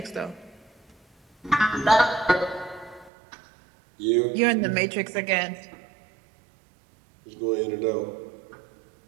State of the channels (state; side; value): drops out; left; at 3.1 s